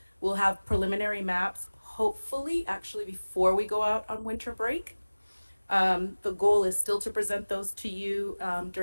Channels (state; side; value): inverted; both; correlation -1.00